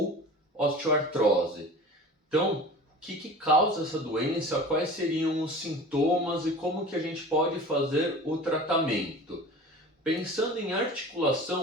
osteoartrose. Então, o que causa essa doença, quais seriam os sintomas e como que a gente pode fazer o tratamento? Pensando em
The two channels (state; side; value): normal; both; correlation 0.38